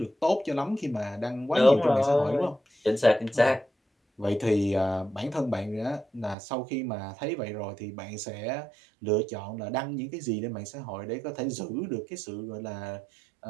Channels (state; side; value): drops out; left; at 6.4 s